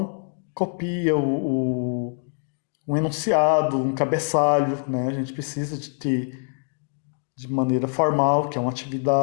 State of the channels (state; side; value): silent; right; 62 dB below the other